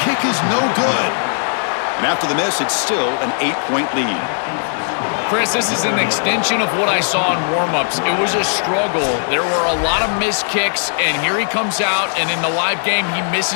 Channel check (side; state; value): right; silent; digital silence